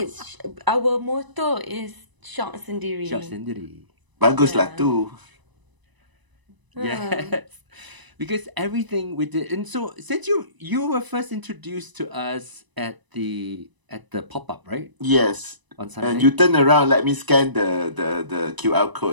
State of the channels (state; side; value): late; left; 1.0 ms